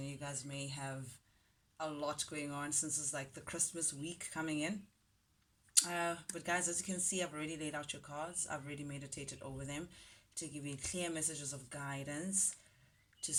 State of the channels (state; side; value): identical; both; correlation 1.00